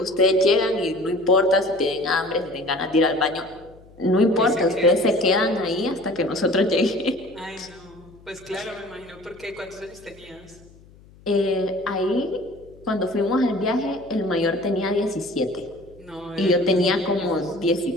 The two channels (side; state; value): left; noise; hum, 25 dB below the sound